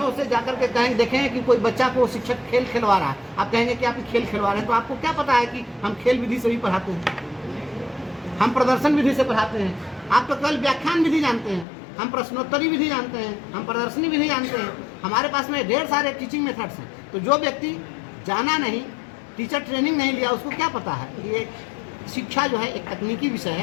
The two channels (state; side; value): drops out; right; at 11.7 s